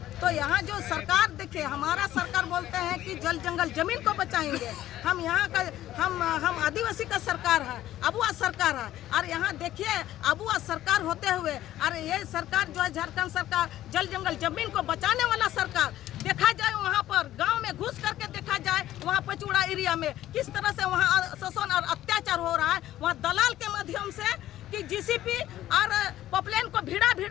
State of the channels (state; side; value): quieter; right; 13.6 dB